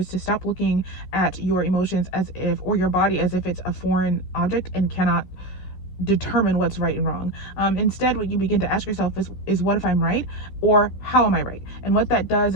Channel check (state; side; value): late; right; 14 ms